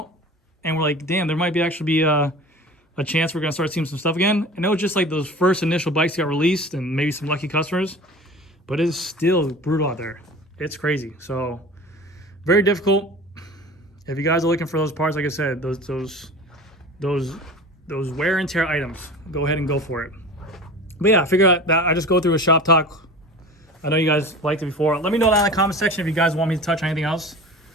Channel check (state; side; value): normal; both; correlation 0.37